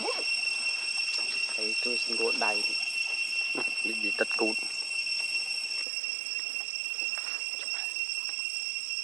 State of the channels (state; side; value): drops out; left; at 5.9 s